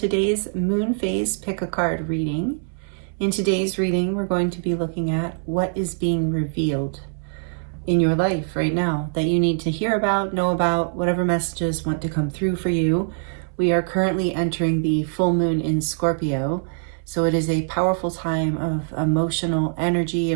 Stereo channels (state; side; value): silent; left; 63 dB below the other